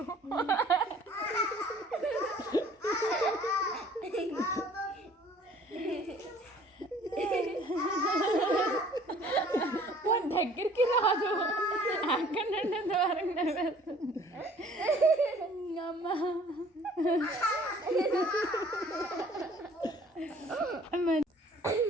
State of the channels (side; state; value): both; normal; correlation 0.54